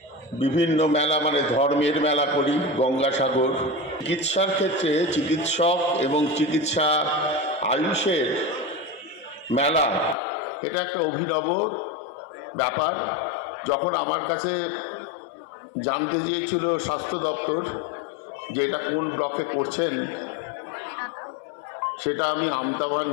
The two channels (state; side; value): drops out; right; at 10.2 s